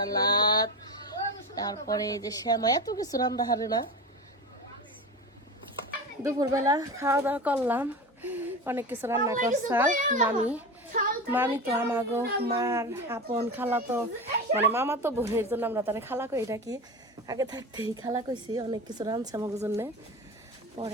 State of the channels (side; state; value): both; normal; correlation 0.26